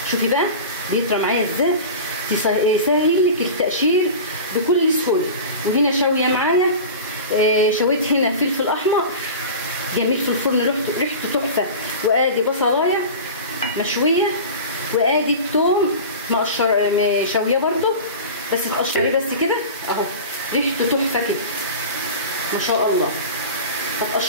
شوفي بقى بيطرى معايا ازاي، يسهل لك التقشير بكل سهوله. وهنا شاويه معايا شويت هنا فلفل احمر جميل في الفرن ريحته تحفه، وادي بصلايه مشويه، وادي الثوم شويه برده بس تقشريه بس كده اهو، ريحته تحفه كده ما شاء الله.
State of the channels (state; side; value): inverted; both; correlation -0.32